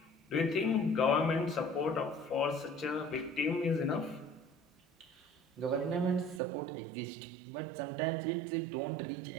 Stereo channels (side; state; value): left; drops out; at 6.4 s